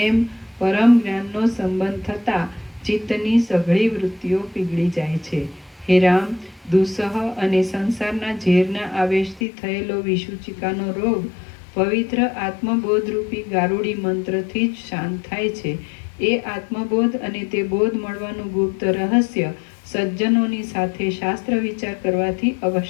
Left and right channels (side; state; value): right; drops out; at 9.4 s